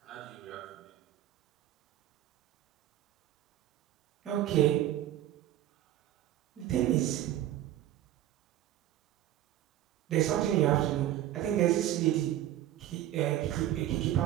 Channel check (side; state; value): left; quieter; 13.0 dB